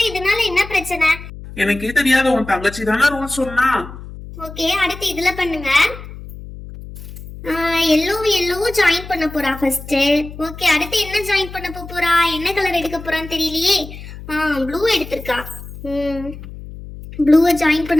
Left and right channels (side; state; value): left; noise; hum, 13 dB below the sound